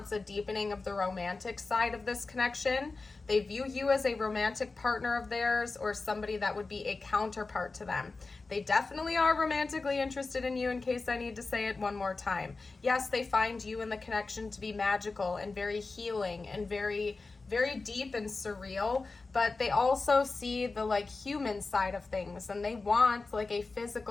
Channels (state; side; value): quieter; right; 3.8 dB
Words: a deepening of the romantic side of this connection. They view you as a romantic partner of theirs or somebody that would be a counterpart to them. They definitely are romantically interested in you, in case I need to say it one more time. Yes, they find you and the connection to be magical and very healing and very, very deep and surreal, but they also see the like human side of things, and they want like a